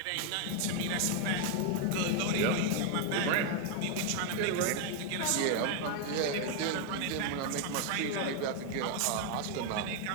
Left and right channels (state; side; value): different; both; correlation 0.01